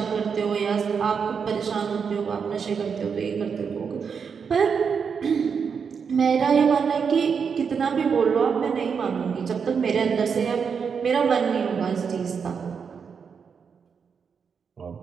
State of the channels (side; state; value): left; quieter; 6.3 dB